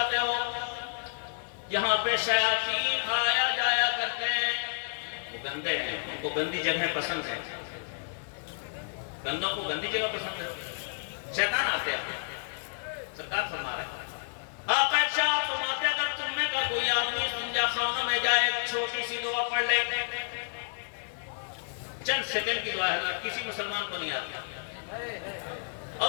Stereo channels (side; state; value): right; silent; digital silence